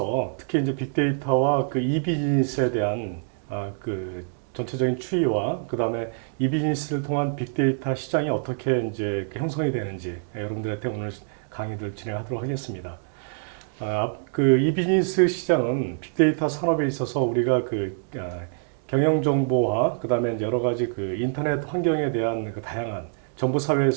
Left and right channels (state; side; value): silent; left; digital silence